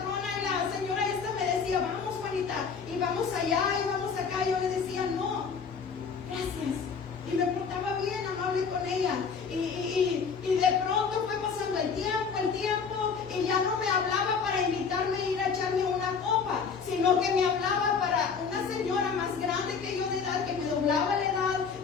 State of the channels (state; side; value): quieter; right; 5.8 dB